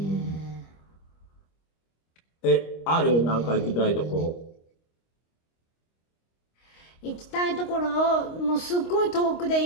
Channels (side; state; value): right; late; 25 ms